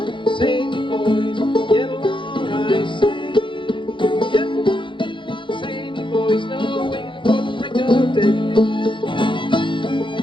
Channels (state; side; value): late; right; 0.24 ms